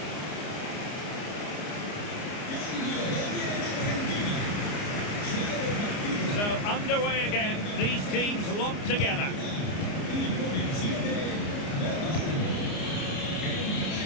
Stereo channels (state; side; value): late; right; 29 ms